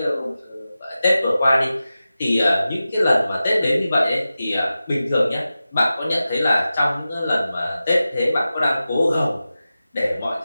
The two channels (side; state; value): both; inverted; correlation -0.94